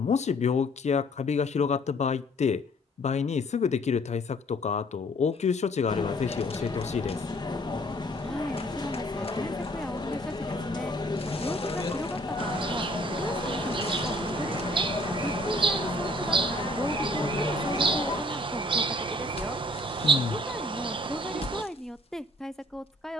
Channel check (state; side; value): normal; both; correlation 0.59